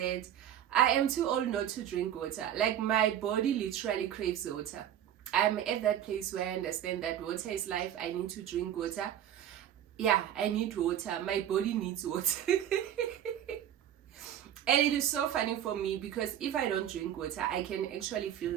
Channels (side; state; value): left; quieter; 10.6 dB